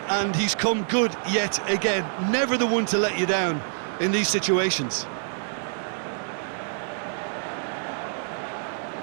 and he's come good yet again. Never the one to let you down in these situations.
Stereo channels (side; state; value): left; silent; 61 dB below the other